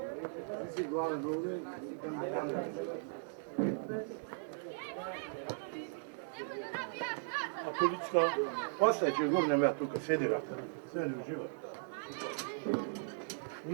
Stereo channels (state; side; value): silent; left; digital silence